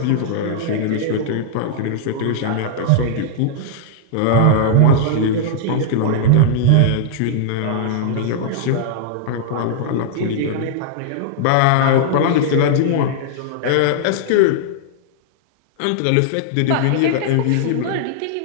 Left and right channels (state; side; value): different; both; correlation -0.01